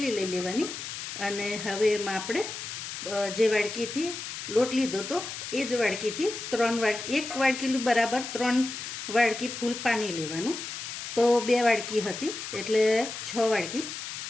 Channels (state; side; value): noise; left; hiss, 7 dB below the sound